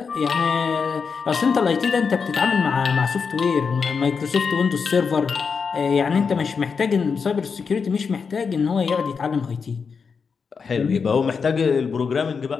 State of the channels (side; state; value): right; quieter; 5.6 dB